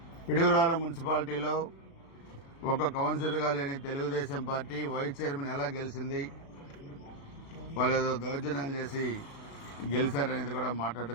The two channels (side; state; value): right; late; 35 ms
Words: పిడుగురాల మున్సిపాలిటీలో ఒక కౌన్సిలర్గా లేని తెలుగుదేశం పార్టీ వైస్ చైర్మన్ ఎలా గెలిచింది, వాళ్ళు ఏదో దౌర్జన్యాలు చేసి గెలిచారనేది కూడా